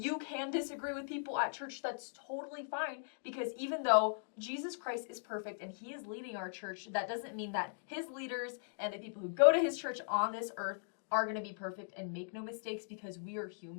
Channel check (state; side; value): silent; right; digital silence